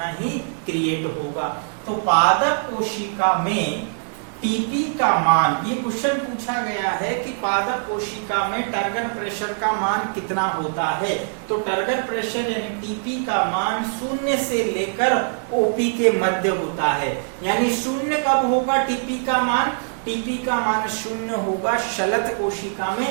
ही क्रिएट होगा। तो पादप कोशिका में टीपी का मान, ये क्वेश्चन पूछा गया है कि पादप कोशिका में टर्गर प्रेशर का मान कितना होता है। तो टर्गर प्रेशर यानी टीपी का मान 0 से लेकर ओपी के मध्य होता है। यानी 0 कब होगा टीपी का मान? टीपी का मान 0 होगा शलथ कोशिका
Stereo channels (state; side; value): silent; left; digital silence